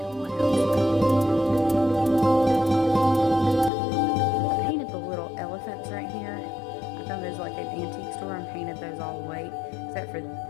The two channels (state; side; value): drops out; right; at 3.7 s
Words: of what else. I painted the little elephants right here. I found those like an antique store and painted those all white, except for